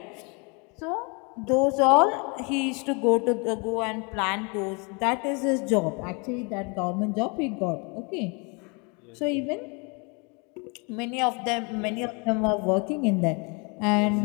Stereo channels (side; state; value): right; quieter; 31.9 dB